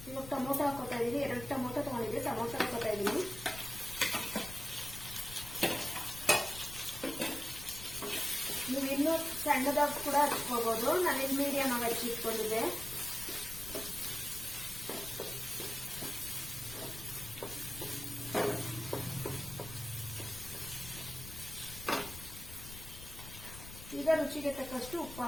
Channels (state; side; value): noise; left; rumble, 13 dB below the sound